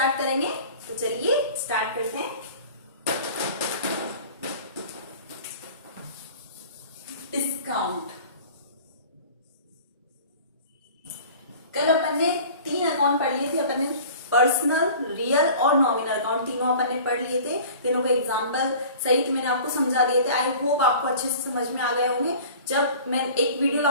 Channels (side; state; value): both; inverted; correlation -0.43